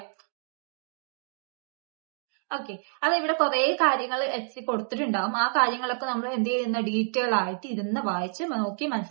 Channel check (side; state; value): left; silent; 58 dB below the other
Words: ഓക്കെ, അത് ഇവിടെ കുറെ കാര്യങ്ങൾ എറ്റ്സി കൊടുത്തിട്ടുണ്ടാവും. ആ കാര്യങ്ങളൊക്കെ നമ്മൾ എന്ത് ചെയ്യുന്ന ഡീറ്റെയിൽ ആയിട്ട് ഇരുന്ന് വായിച്ച് നോക്കി